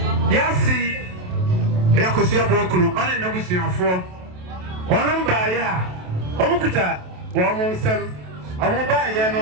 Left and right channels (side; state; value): left; late; 27 ms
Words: yasi yakosia bokunu ane nabusuafo ono bae a omukuta wo mo nsem omo bae